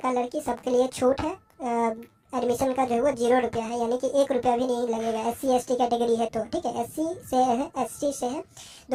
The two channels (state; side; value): identical; both; correlation 1.00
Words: लड़की सबके लिए छूट है। एडमिशन का जो है वो 0 रुपया है, यानी कि 1 रुपया भी नहीं लगेगा। SC ST कैटेगरी है तो, ठीक है। SC से है, ST से है,